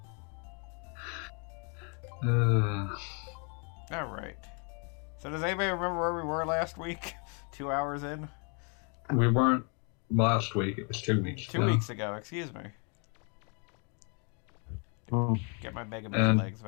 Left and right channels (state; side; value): quieter; right; 37.1 dB